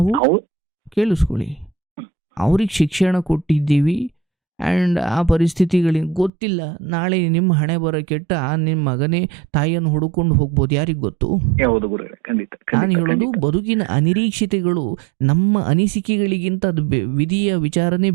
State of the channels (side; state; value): left; drops out; at 6.3 s